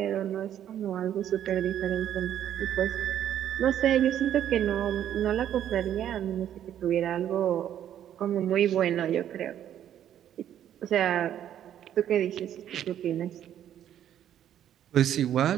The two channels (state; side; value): quieter; left; 10.6 dB